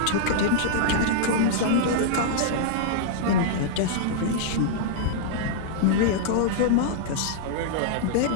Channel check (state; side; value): different; both; correlation -0.02